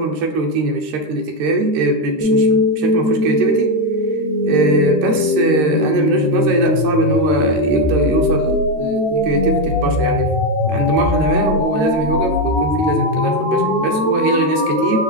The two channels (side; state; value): left; late; 13 ms